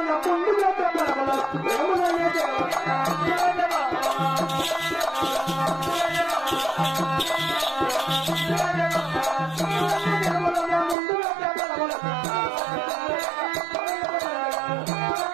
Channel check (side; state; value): left; drops out; at 11.0 s